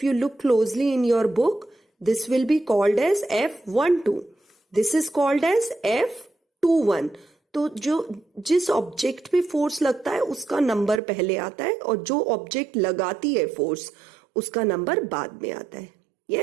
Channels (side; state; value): left; drops out; at 11.0 s